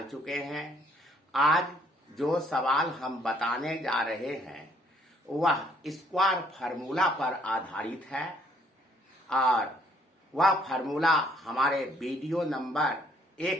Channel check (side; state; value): both; normal; correlation 0.65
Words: चुके हैं। आज जो सवाल हम बताने जा रहे हैं वह स्क्वायर फार्मूला पर आधारित है और वह फार्मूला हमारे वीडियो नंबर